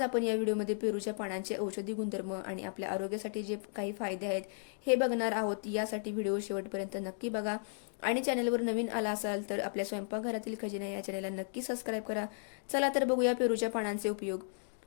आपण या व्हिडिओमध्ये पेरूच्या पानांचे औषधी गुणधर्म आणि आपल्या आरोग्यासाठी जे काही फायदे आहेत हे बघणार आहोत. यासाठी व्हिडिओ शेवटपर्यंत नक्की बघा आणि चॅनलवर नवीन आला असाल तर आपल्या स्वयंपाकघरातील खजिना या चॅनलला नक्की सबस्क्राईब करा. चला तर बघूया पेरूच्या पानांचे उपयोग.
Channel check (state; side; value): silent; right; digital silence